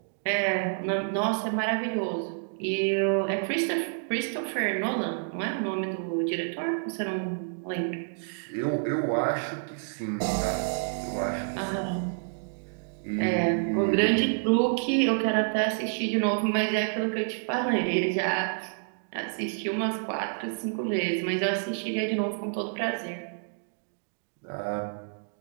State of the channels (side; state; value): left; silent; digital silence